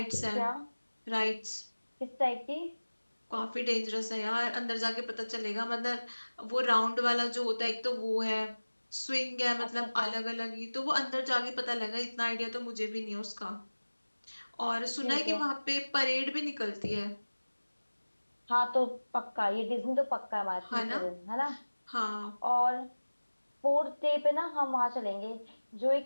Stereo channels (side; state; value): both; inverted; correlation -1.00